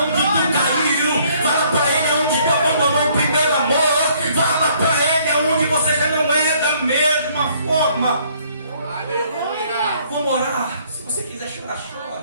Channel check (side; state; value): both; inverted; correlation -0.63